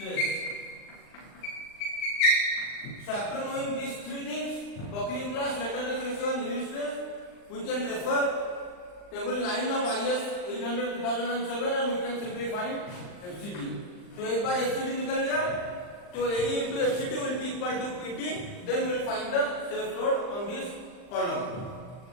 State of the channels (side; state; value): right; late; 39 ms